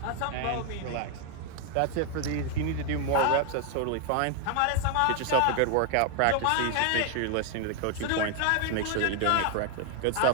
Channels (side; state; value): both; different; correlation 0.00